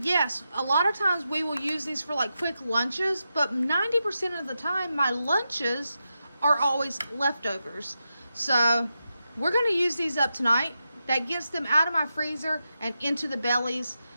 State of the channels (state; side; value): inverted; both; correlation -0.89